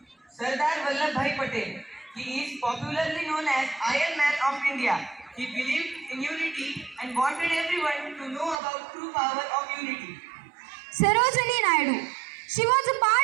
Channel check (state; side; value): drops out; left; at 8.6 s